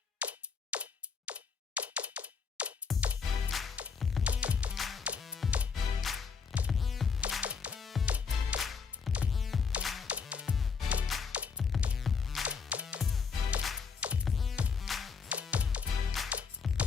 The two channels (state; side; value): quieter; right; 5.7 dB